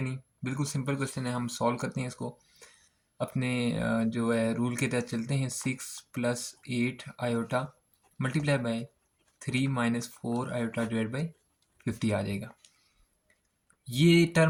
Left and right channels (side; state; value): both; identical; correlation 1.00